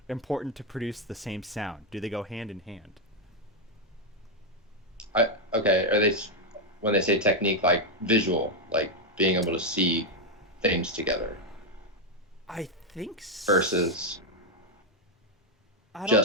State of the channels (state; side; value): normal; both; correlation 0.03